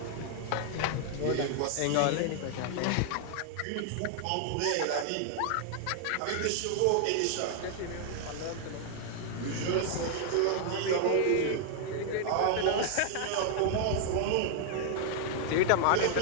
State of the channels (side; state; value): both; different; correlation 0.00